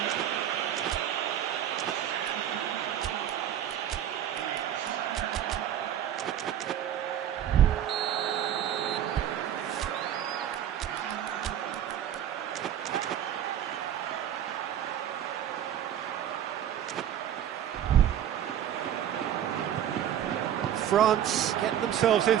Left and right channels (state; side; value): quieter; left; 10.5 dB